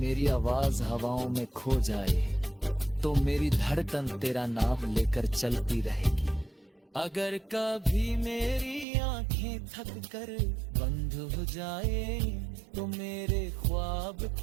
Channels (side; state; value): left; drops out; at 8.8 s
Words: आवाज हवाओं में खो जाए तो मेरी धड़कन तेरा नाम लेकर चलती रहेगी। अगर कभी मेरी आंखें थक कर बंद हो जाए तो मेरे ख्वाब